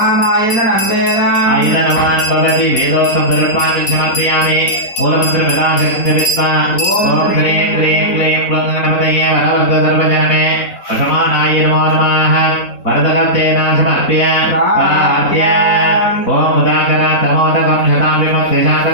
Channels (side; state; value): right; late; 4.3 ms